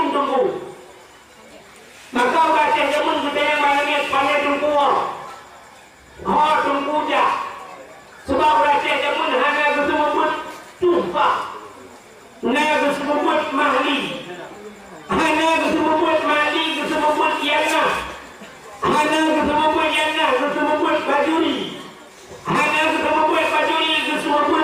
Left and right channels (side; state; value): both; identical; correlation 1.00